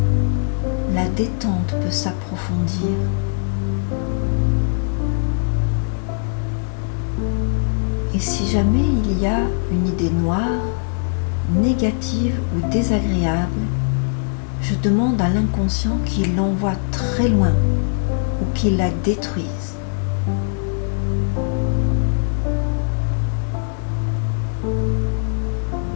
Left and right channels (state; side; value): silent; right; digital silence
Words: la détente peut s'approfondir. Et si jamais il y a une idée noire, négative ou désagréable, je demande à l'inconscient qu'il l'envoie très loin ou qu'il la détruise.